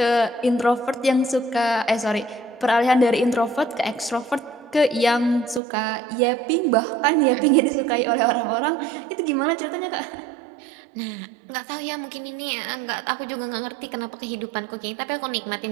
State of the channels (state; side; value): drops out; left; at 5.6 s